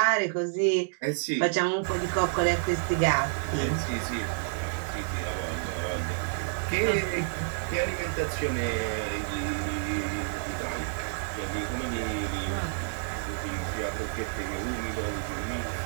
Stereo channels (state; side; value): silent; left; digital silence